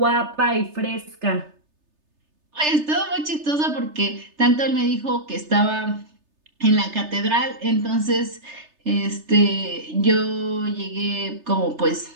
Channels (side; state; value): left; late; 3.3 ms